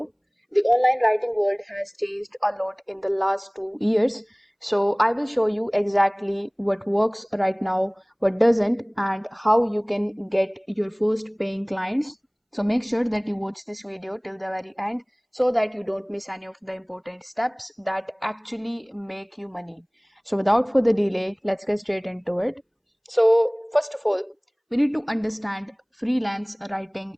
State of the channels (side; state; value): both; identical; correlation 1.00